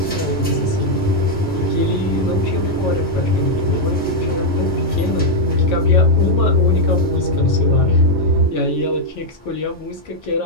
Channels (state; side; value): normal; both; correlation -0.01